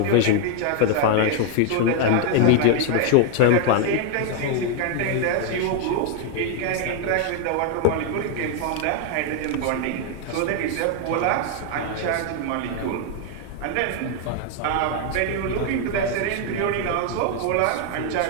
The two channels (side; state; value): both; different; correlation 0.00